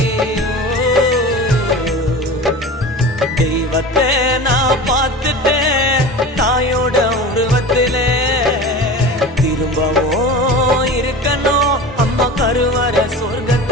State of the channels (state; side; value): normal; both; correlation 0.33